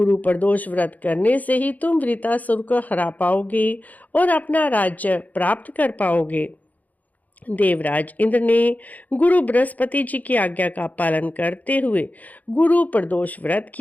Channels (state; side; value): late; right; 0.078 ms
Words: प्रदोष व्रत करने से ही तुम वृतासुर को हरा पाओगे और अपना राज्य प्राप्त कर पाओगे। देवराज इंद्र ने गुरु बृहस्पति जी की आज्ञा का पालन करते हुए गुरु प्रदोष व्रत